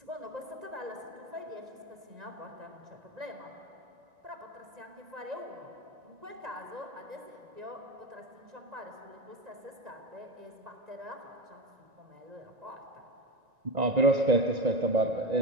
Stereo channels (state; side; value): late; left; 1.9 ms